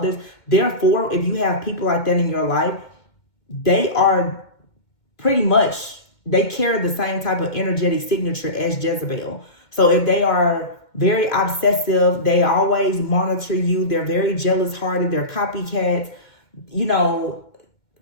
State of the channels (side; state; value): right; late; 2.2 ms